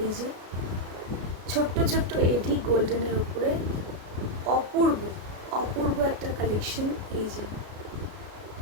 যে ছোট্ট ছোট্ট এডি গোল্ডেনের উপরে, অপূর্ব অপূর্ব একটা কালেকশন। এই যে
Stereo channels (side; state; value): left; late; 33 ms